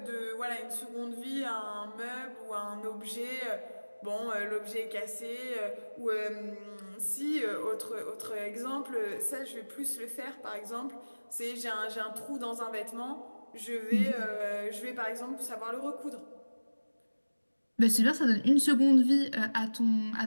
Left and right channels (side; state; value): both; inverted; correlation -1.00